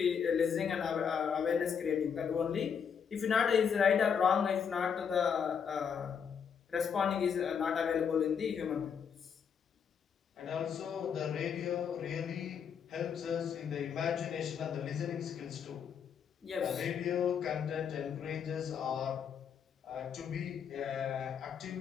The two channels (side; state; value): right; quieter; 7.2 dB